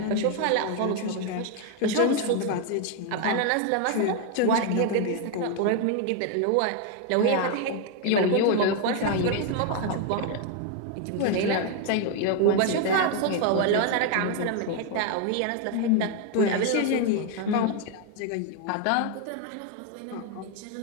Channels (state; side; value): different; both; correlation 0.01